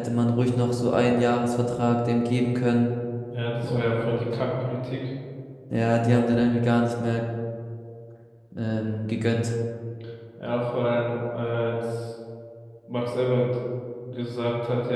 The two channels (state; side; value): identical; both; correlation 1.00